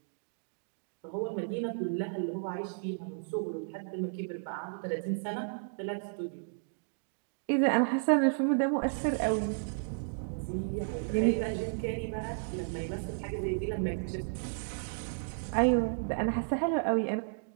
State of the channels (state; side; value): silent; left; digital silence